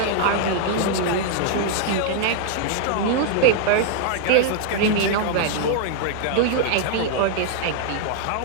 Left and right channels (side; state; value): both; different; correlation -0.01